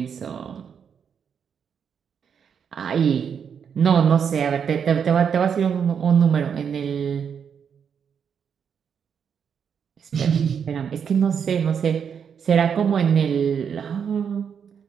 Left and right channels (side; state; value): left; quieter; 7.3 dB